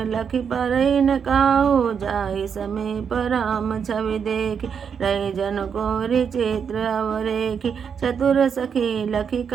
लखि परई न काहू। जाहि समीप राम छवि देखि, रही जन कोरि चित्र अवरेखि। चतुर सखी लखि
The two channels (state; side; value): quieter; left; 7.0 dB